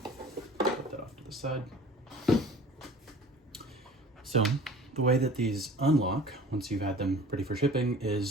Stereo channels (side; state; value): both; normal; correlation 0.45